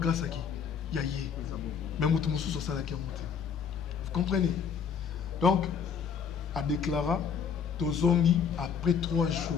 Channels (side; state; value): right; quieter; 6.8 dB